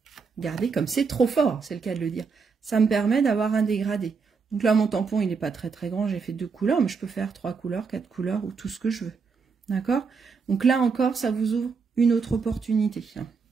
regardez comme c'est trop fort, c'est le cas de le dire, ça me permet d'avoir un dégradé. Donc là, mon tampon, il n'est pas très très grand, j'ai fait 2 couleurs, mais je peux faire 3 couleurs, 4 couleurs, ou tout ce que je veux, d'accord? Donc là encore, ça vous ouvre une autre opportunité.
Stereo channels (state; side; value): quieter; left; 5.2 dB